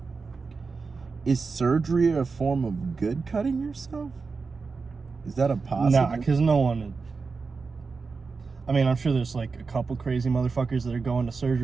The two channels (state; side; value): quieter; left; 4.6 dB